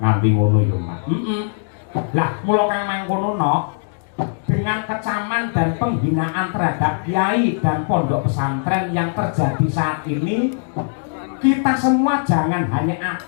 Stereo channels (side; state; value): right; silent; digital silence